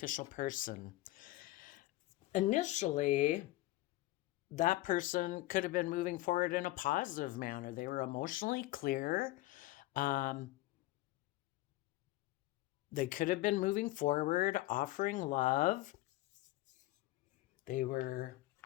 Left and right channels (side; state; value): right; quieter; 17.6 dB